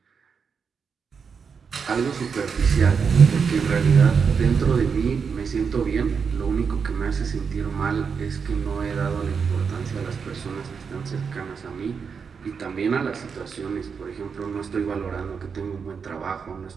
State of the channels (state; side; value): quieter; left; 6.0 dB